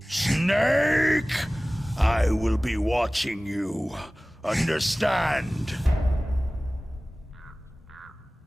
I will be watching you. Understand?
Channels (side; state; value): both; normal; correlation 0.98